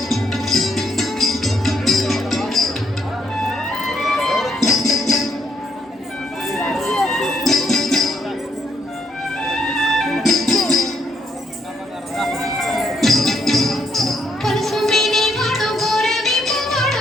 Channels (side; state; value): both; normal; correlation 0.73